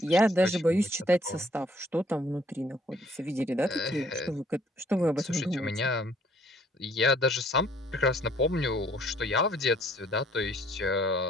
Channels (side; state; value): both; normal; correlation 0.62